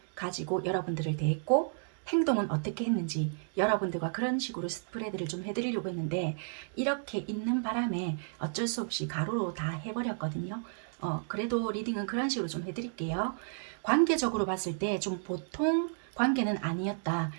가지고 여러분들을 대했고 행동은 어떻게 했는지 여러분들과 그런 식으로 스프레드를 좀 해드리려고 했는데, 이렇게 있는 바람에 어쩔 수 없이 가로로 다 해버렸거든요. 그래도 리딩은 그런 식으로 좀 해드릴게요. 관계적으로 봤을 때 좀 보통 관계는 아니었다.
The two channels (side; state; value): left; silent; digital silence